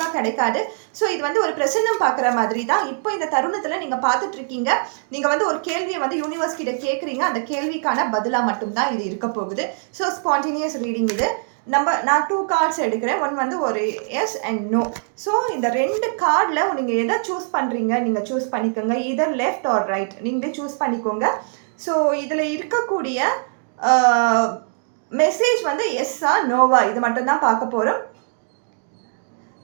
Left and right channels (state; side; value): silent; left; digital silence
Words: கிடைக்காது. ஸோ இது வந்து ஒரு பிரசன்னம் பார்க்குற மாதிரி தான். இப்போ இந்த தருணத்தில் நீங்கள் பார்த்துட்டு இருக்கீங்க, நீங்கள் வந்து ஒரு கேள்வியை வந்து யூனிவர்ஸ் கிட்ட கேட்குறீங்க, அந்த கேள்விக்கான பதிலாக மட்டும்தான் இது இருக்க போகுது. ஸோ ஸ்பான்டேனியஸ் ரீடிங் இது. நான் 2 கார்ட்ஸ் எடுக்கிறேன். ஒன் வந்து ஒரு எஸ் அண்ட் நோ. ஸோ இந்த 2 கார்டில் நீங்கள் எதை சூஸ் பண்ணுறீங்க நீங்கள் சூஸ் பண்ணிக்கோங்க. இதர் லெஃப்ட் ஆர் ரைட் நீங்களே சூஸ் பண்ணிக்கோங்க. ஸோ இதில் இருக்கக்கூடிய மெசேஜ் வந்து எஸ்ஸா நோவா இது மட்டும்தான் பார்க்க போகிறோம்.